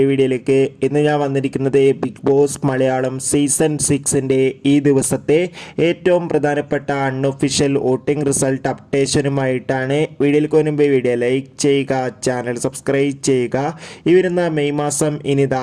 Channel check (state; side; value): identical; both; correlation 1.00